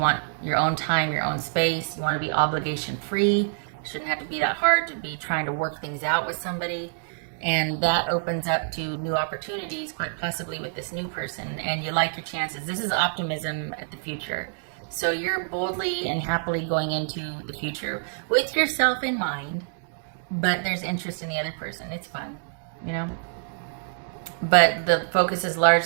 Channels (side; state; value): left; silent; digital silence